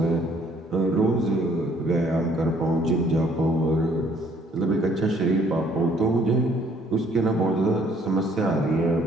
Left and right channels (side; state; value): both; normal; correlation 0.62